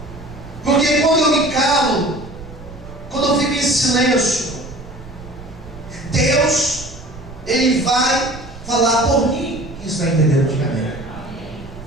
Porque quando eu me calo, quando eu fico em silêncio, Deus, Ele vai falar por mim. Quem está entendendo? Diga amém.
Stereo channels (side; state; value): right; noise; rumble, 15 dB below the sound